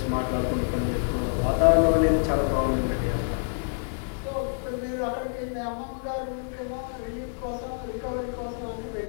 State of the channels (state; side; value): silent; right; digital silence